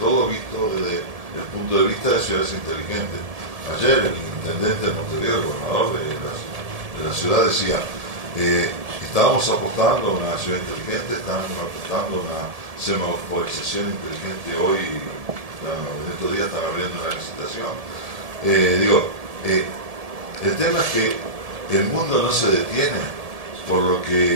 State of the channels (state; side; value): late; left; 1.7 ms